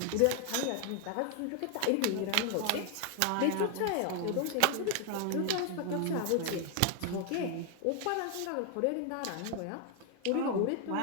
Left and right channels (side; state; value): both; different; correlation 0.00